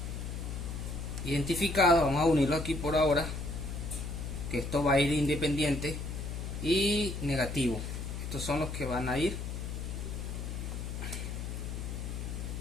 identificados. Vamos a unirlo aquí por ahora, que esto va a ir independiente. Y negativo. Estos son los que van a ir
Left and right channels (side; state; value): left; noise; hum, 5 dB below the sound